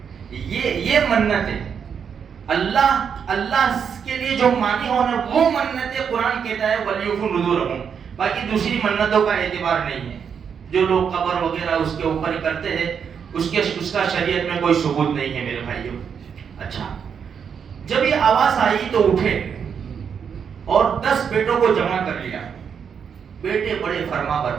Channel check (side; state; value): left; quieter; 7.1 dB